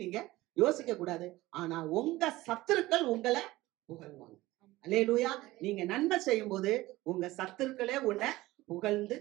நீங்க யோசிக்க கூடாது. ஆனா உங்க சத்துருக்கள் உங்களை புகழ்வாங்க. அல்லேலூயா. நீங்க நன்மை செய்யும் போது உங்க சத்துருக்களே உன்னை புகழ்ந்து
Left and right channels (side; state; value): left; quieter; 18.2 dB